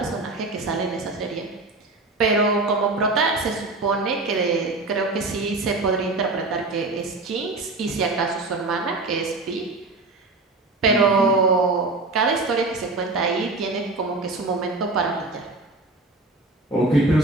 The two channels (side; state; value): left; quieter; 3.2 dB